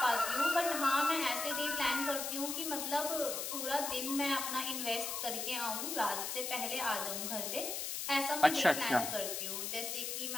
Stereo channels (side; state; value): left; noise; hiss, 3 dB below the sound